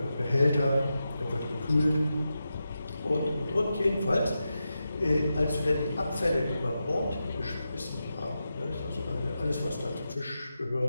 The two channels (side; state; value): both; inverted; correlation -0.90